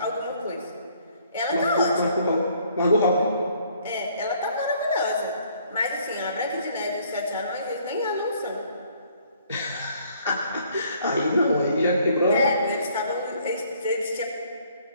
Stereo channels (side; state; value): both; inverted; correlation -0.62